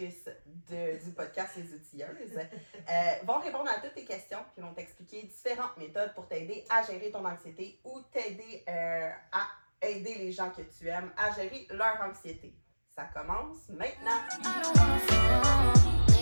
du podcast Les Outilleuses, vont répondre à toutes tes questions puis vont t'expliquer différentes méthodes pour t'aider à gérer ton anxiété ou t'aider à aider les gens que tu aimes à gérer leur anxiété. Ça commence maintenant!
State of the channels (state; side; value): inverted; both; correlation -1.00